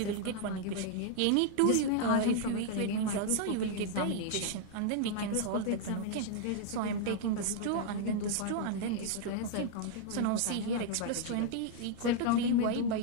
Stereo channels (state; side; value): different; both; correlation 0.00